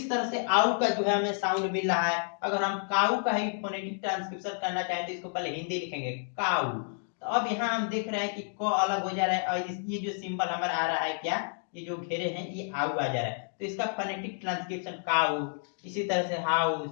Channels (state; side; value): silent; right; 58 dB below the other